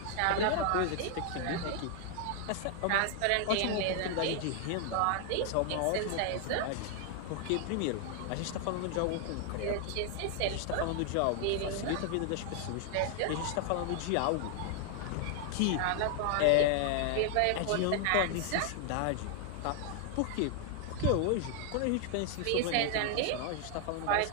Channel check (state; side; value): different; both; correlation 0.00